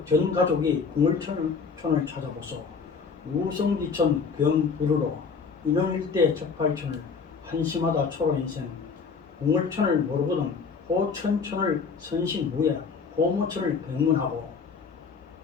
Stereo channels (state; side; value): quieter; right; 5.3 dB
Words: 전 가족이 궁을천을 찾아보소. 우성지천 병부르로 인원 일대 척팔천을 한심하다 초로인생 궁을천을 모르거든 호천천을 선심무예 호모천을 백문하고